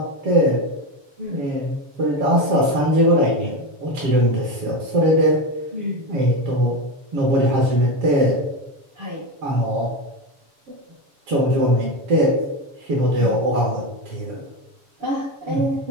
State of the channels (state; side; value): late; left; 7.1 ms